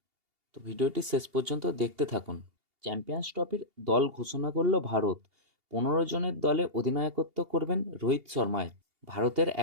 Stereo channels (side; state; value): left; late; 2.8 ms